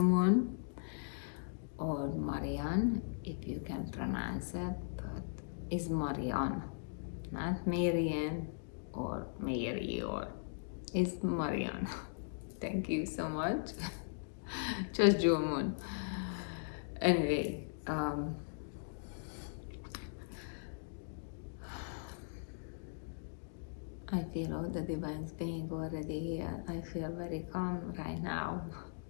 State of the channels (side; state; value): right; silent; digital silence